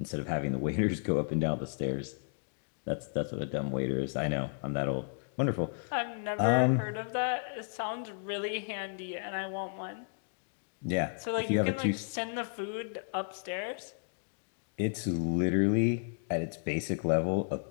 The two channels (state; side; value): silent; right; digital silence